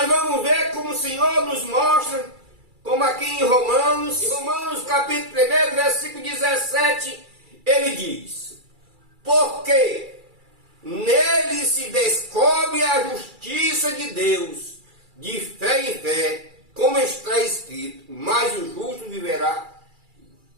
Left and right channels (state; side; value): late; left; 2.3 ms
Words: vamos ver como o Senhor nos mostra, como aqui em Romanos capítulo 1, versículo 17, Ele diz: porque nele se descobre a justiça de Deus, de fé em fé, como está escrito, mas o justo viverá